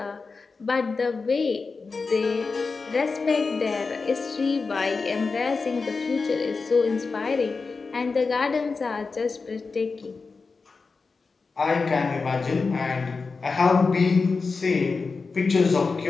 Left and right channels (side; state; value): right; quieter; 4.4 dB